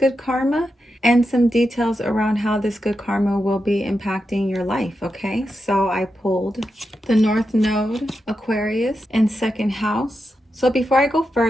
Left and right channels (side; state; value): both; normal; correlation 0.88